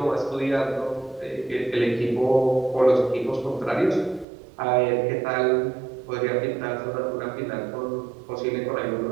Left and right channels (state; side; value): drops out; left; at 4.2 s